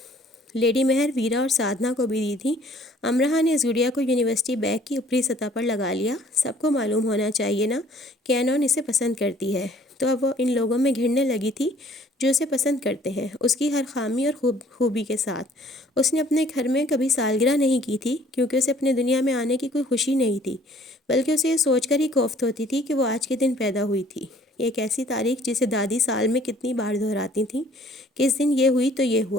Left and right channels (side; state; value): both; normal; correlation 0.57